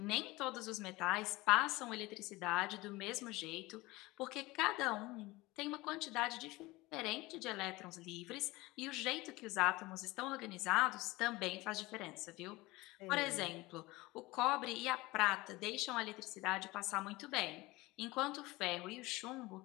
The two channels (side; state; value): right; quieter; 20.9 dB